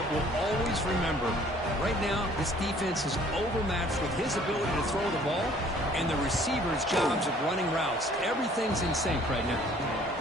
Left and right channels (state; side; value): normal; both; correlation 0.56